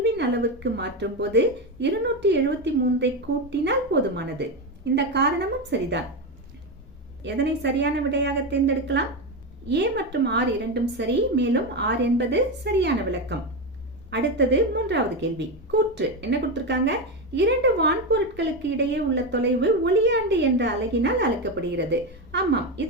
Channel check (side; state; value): both; normal; correlation 0.13